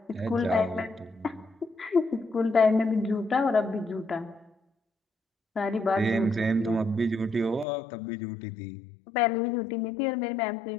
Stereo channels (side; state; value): right; drops out; at 7.7 s